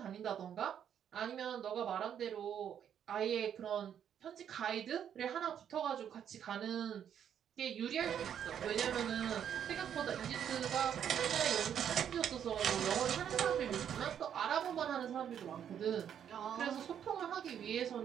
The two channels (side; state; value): left; quieter; 9.0 dB